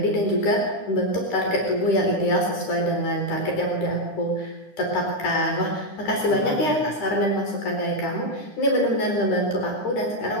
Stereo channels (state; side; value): late; right; 9.9 ms